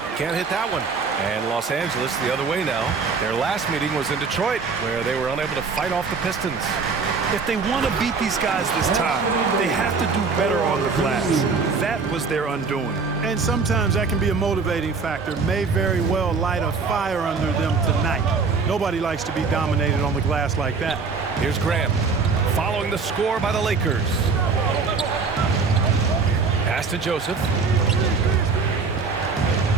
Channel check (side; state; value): left; quieter; 4.7 dB